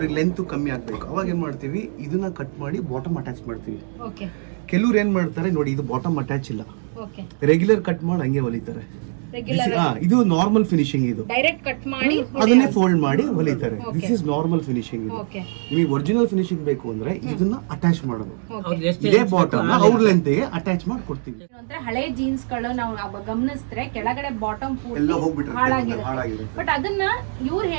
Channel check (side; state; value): left; silent; digital silence